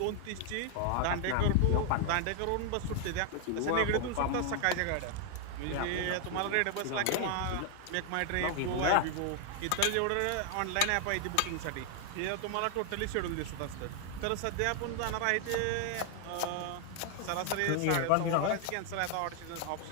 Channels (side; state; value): both; different; correlation 0.00